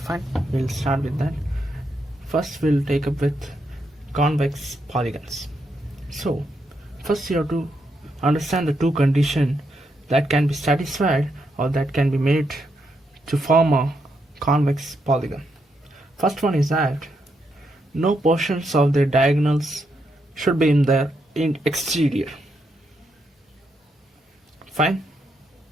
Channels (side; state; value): both; normal; correlation 0.80